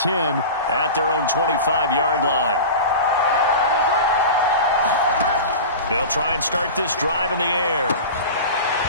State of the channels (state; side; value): inverted; both; correlation -0.31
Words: at their own 25-yard line. They'll try and start this drive in the air.